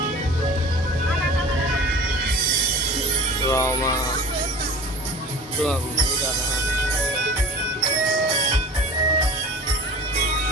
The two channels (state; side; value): normal; both; correlation 0.39